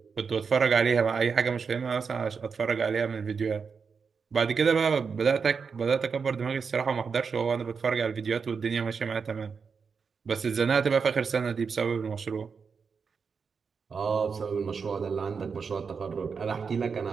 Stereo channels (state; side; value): quieter; left; 5.6 dB